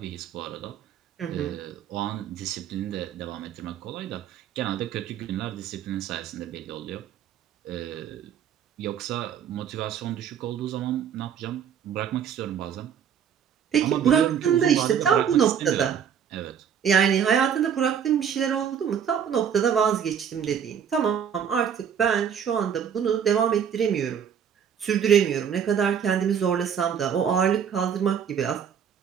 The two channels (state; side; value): quieter; left; 8.2 dB